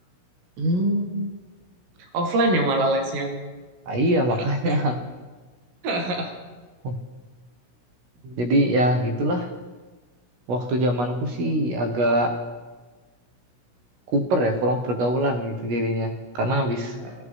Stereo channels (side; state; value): left; late; 16 ms